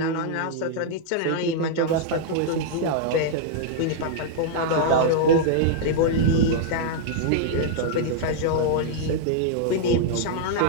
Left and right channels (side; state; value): both; different; correlation -0.01